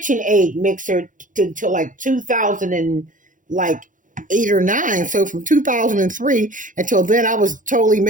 mixer until like 2008 or 9. So from 2003 until then, I was totally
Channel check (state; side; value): late; left; 0.38 ms